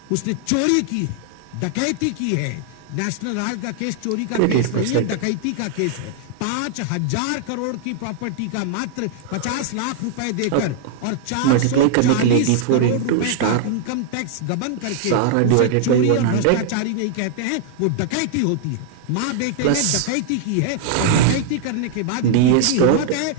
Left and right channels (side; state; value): both; different; correlation 0.00